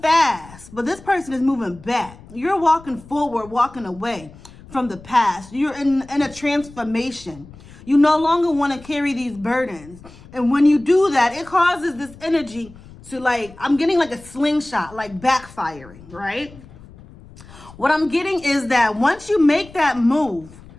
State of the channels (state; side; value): noise; left; rumble, 21 dB below the sound